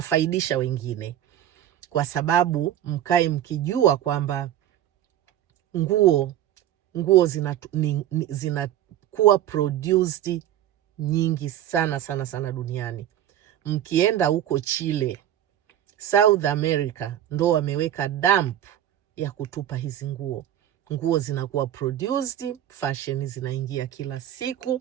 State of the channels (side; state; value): left; quieter; 11.8 dB